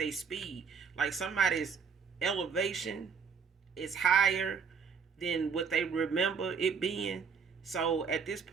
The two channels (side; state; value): left; quieter; 6.0 dB